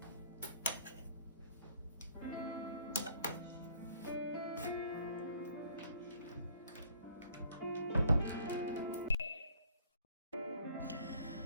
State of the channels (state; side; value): inverted; both; correlation -0.59